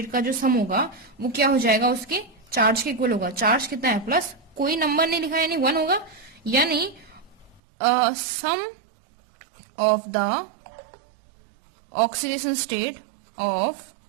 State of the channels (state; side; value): drops out; left; at 7.6 s